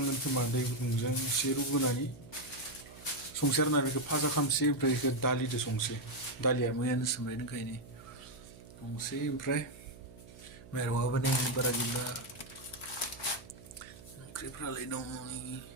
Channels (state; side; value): noise; right; hum, 18 dB below the sound